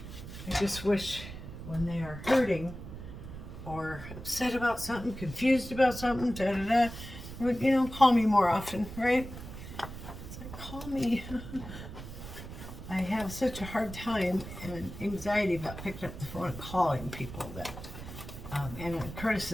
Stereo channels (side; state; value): right; noise; rumble, 11 dB below the sound